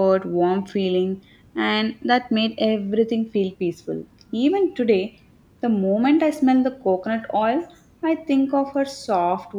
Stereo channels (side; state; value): both; identical; correlation 1.00